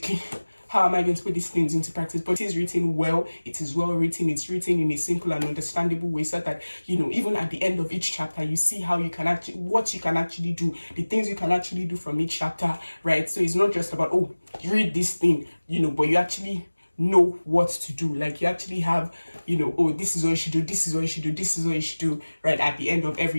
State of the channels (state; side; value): inverted; both; correlation -1.00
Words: how am I going to put these things into practice? But it is written well, it is well written, it's written in a simple and understandable way, so that, you know, even at the end of each chapter, you see how you can actually, what you can actually do, the things you can actually do from each chapter, right? So it's not just about, oh, you read this thing, you know, but you actually know what to do. Like, you actually have, you know, oh, this is what you should do, this is what you should do, this is what you should do, right, at the end of